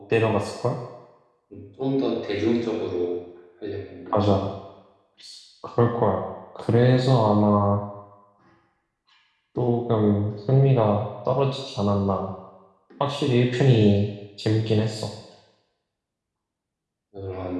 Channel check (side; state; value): both; identical; correlation 1.00